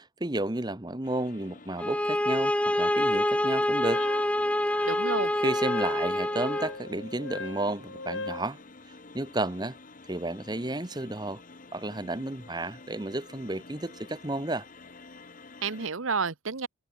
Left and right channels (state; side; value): normal; both; correlation 0.67